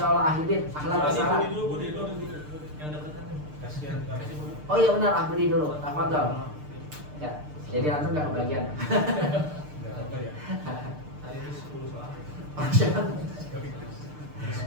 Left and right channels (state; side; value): late; left; 6.7 ms